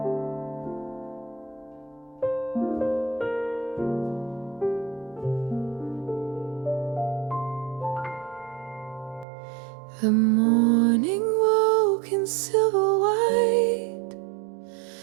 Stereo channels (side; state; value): left; drops out; at 9.2 s